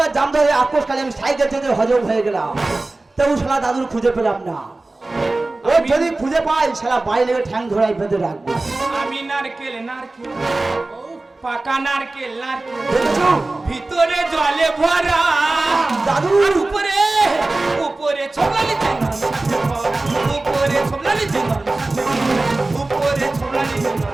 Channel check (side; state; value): left; quieter; 3.1 dB